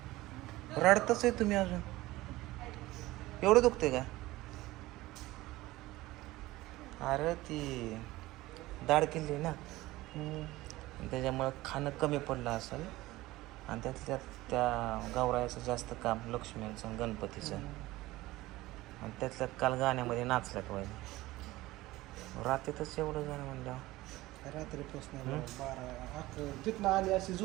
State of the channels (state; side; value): quieter; left; 18.3 dB